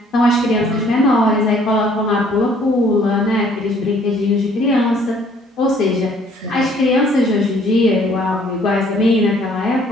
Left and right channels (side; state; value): both; normal; correlation 0.60